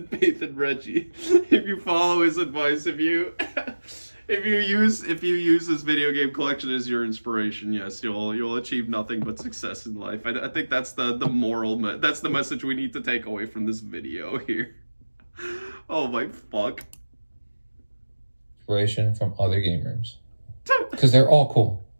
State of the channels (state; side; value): inverted; both; correlation -1.00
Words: faith in Reggie. If you follow his advice, if you use this video game collection as your inspiration, yes, you'll achieve nothing but success in life. I think that's the moral. That's the message we need to take away from this video here. Oh my fuck. Inspiration from other game rooms, because they're all cool.